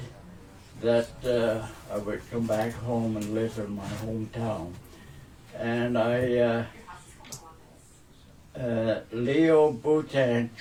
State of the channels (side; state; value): both; identical; correlation 1.00